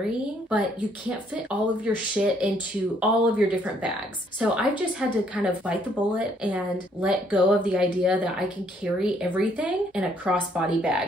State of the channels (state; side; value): normal; both; correlation 0.67